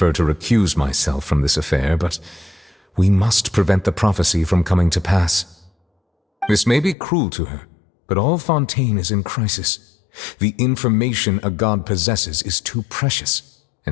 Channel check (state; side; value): drops out; right; at 7.0 s